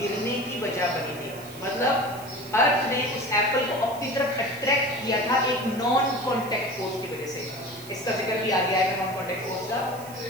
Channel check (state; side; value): noise; right; hiss, 18 dB below the sound